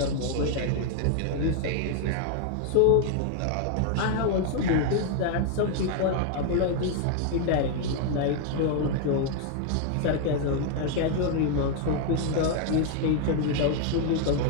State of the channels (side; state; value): both; different; correlation 0.00